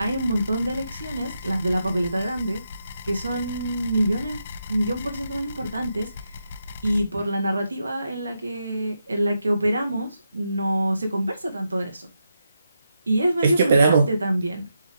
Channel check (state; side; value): inverted; both; correlation -0.84